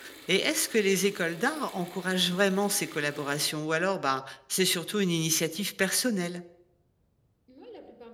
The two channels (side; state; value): both; identical; correlation 1.00